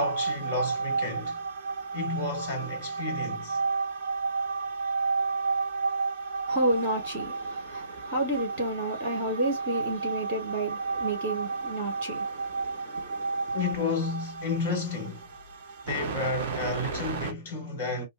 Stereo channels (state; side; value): inverted; both; correlation -0.55